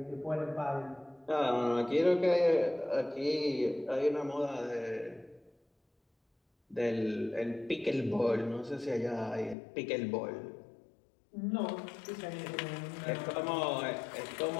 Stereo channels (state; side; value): drops out; right; at 9.6 s